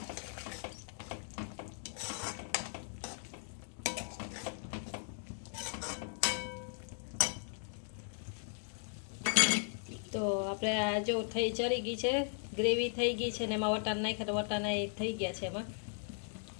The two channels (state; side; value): silent; right; digital silence